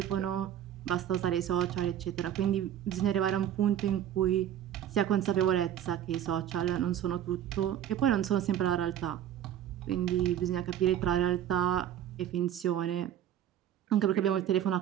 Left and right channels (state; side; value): quieter; left; 10.7 dB